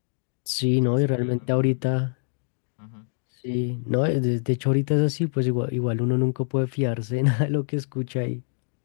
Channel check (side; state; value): right; silent; digital silence